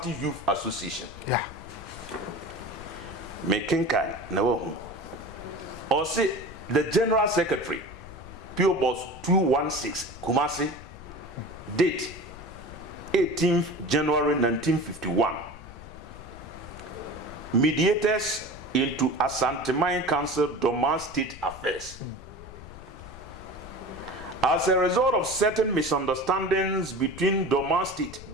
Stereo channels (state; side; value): noise; left; rumble, 16 dB below the sound